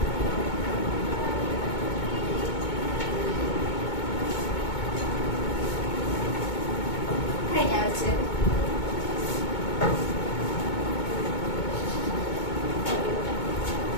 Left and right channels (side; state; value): right; late; 2.2 ms